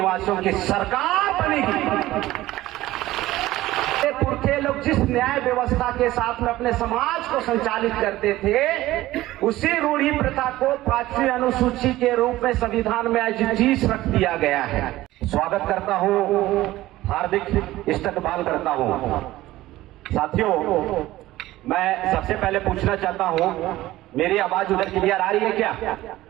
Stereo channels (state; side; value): quieter; left; 16.4 dB